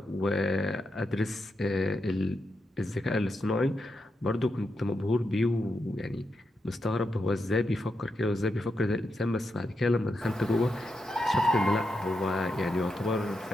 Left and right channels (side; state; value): both; normal; correlation 0.85